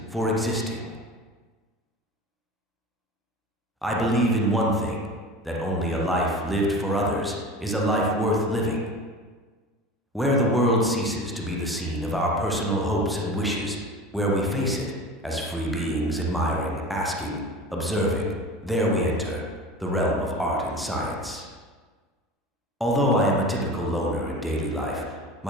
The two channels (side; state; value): both; normal; correlation 0.33